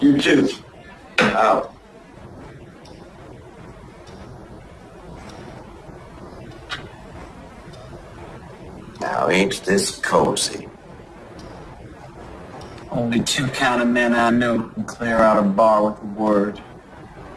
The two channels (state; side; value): identical; both; correlation 1.00